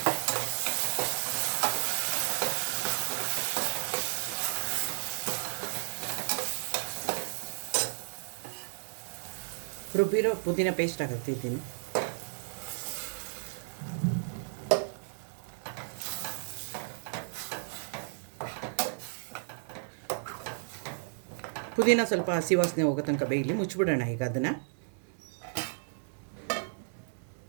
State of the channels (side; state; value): left; silent; digital silence